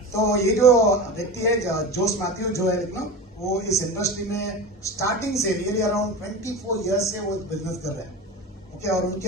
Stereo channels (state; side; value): normal; both; correlation 0.28